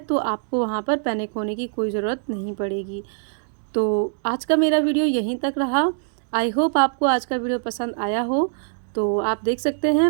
आपको वहाँ पर पैनिक होने की कोई ज़रूरत नहीं पड़ेगी। तो आज का मेरा वीडियो यहीं तक रहा। आई होप आपको आज का वीडियो पसंद आया हो। तो आप देख सकते हैं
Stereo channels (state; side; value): silent; left; digital silence